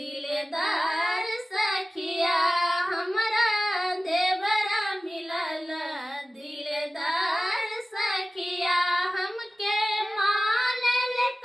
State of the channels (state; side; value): normal; both; correlation 0.97